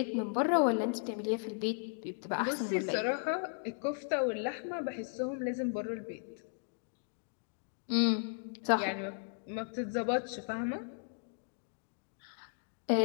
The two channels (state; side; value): silent; right; 54 dB below the other